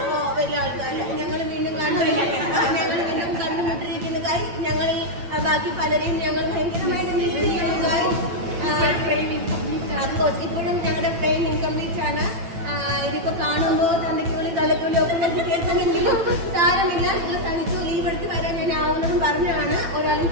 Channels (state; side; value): late; left; 8.8 ms